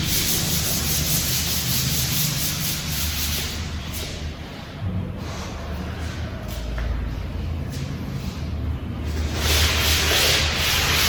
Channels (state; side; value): identical; both; correlation 1.00